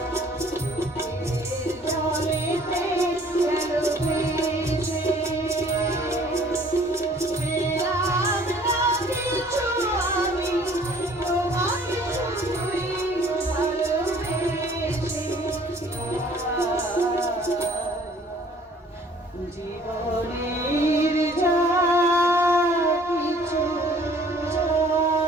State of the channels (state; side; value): normal; both; correlation 0.55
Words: জীবনের যা কিছু